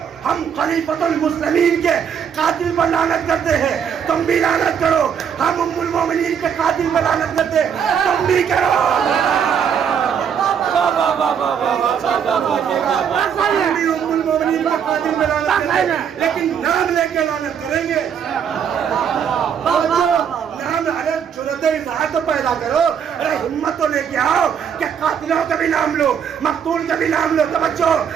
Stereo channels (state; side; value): quieter; left; 7.8 dB